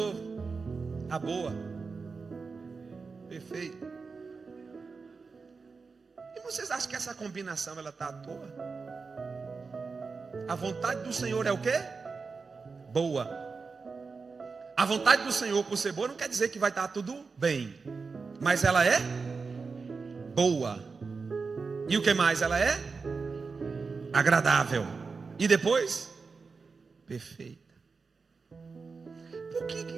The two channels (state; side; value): quieter; left; 4.7 dB